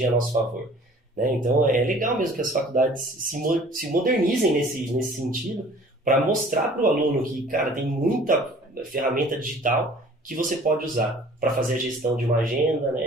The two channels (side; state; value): both; normal; correlation 0.50